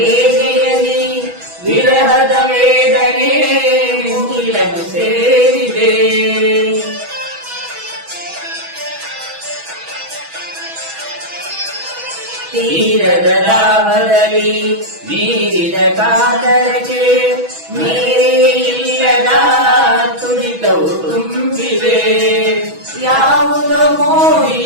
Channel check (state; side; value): late; left; 6.2 ms